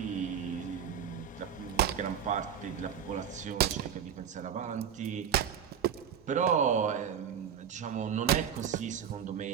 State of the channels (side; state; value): left; quieter; 8.4 dB